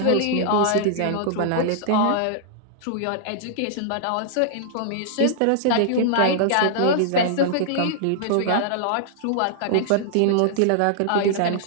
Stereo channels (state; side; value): different; both; correlation -0.01